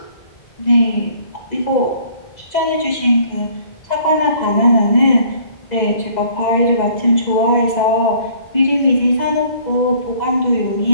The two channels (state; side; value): late; right; 2.0 ms